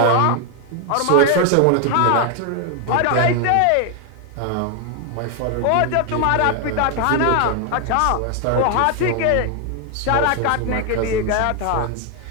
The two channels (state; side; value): different; both; correlation 0.01